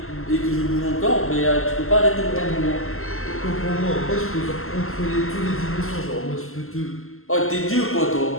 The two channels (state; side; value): late; right; 0.62 ms